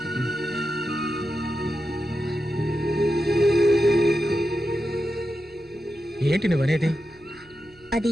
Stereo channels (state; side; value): noise; right; hum, 28 dB below the sound